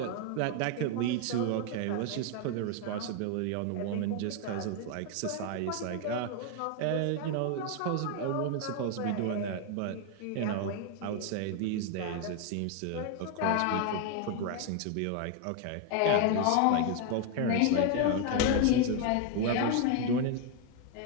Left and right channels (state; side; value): different; both; correlation 0.01